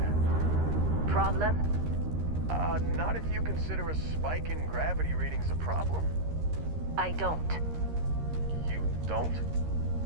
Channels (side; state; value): left; late; 13 ms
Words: Problem? Not if you consider a spike in gravity readings a problem. I don't. You don't?